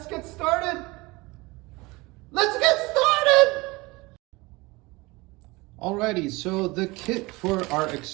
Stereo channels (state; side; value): quieter; left; 23.1 dB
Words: get started. Let's get started! Alrighty, so the kit for our